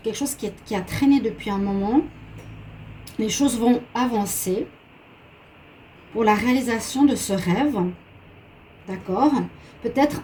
quelque chose qui a traîné depuis un moment, les choses vont avancer pour la réalisation de ce rêve. D'accord? Peut-être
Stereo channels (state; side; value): identical; both; correlation 1.00